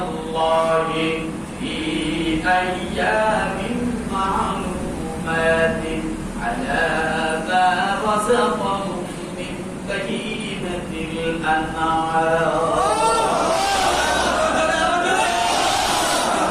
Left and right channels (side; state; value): both; identical; correlation 1.00